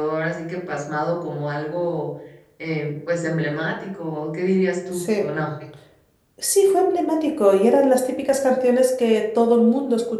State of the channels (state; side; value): identical; both; correlation 1.00